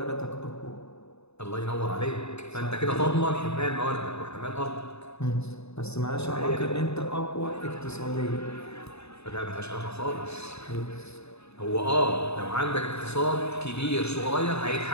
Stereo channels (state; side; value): late; right; 0.80 ms